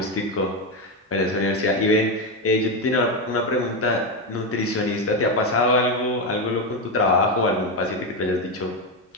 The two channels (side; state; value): both; normal; correlation 0.10